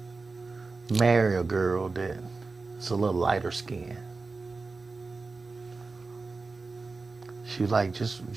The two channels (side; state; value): left; quieter; 4.0 dB